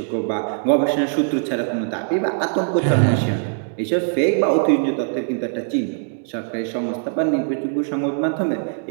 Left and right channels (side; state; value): left; silent; 65 dB below the other